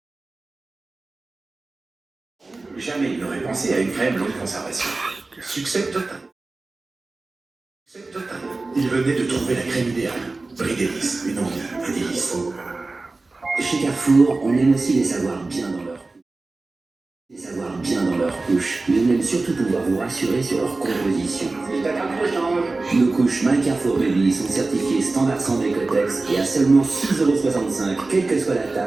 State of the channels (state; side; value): quieter; left; 3.4 dB